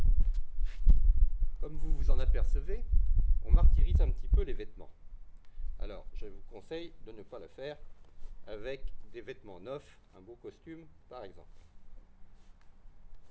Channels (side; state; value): both; identical; correlation 1.00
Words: Comme vous vous en apercevez, on martyrise un petit peu les vêtements. Alors, je vous conseille de ne pas le faire avec des vêtements neufs, un beau costume par exemple.